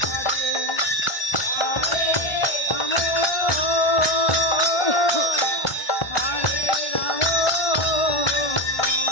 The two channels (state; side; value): late; right; 1.4 ms